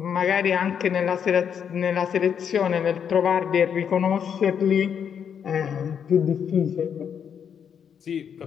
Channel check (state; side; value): quieter; right; 7.8 dB